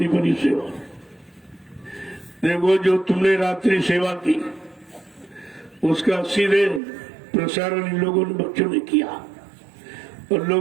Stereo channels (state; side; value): drops out; left; at 6.8 s